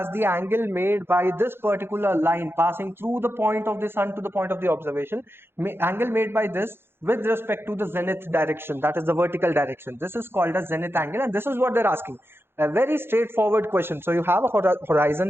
the angle made by this particular line passing through the point of the sun to the point of the observation. Angle made by this with respect to the zenith direction, that is the vertical direction. This is called as zenith angle, and this is what they're asking. A very straightforward question. So you have a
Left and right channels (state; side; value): late; left; 0.11 ms